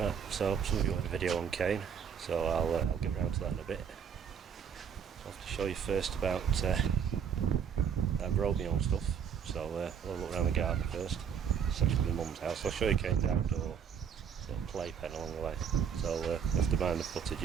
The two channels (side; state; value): left; quieter; 7.5 dB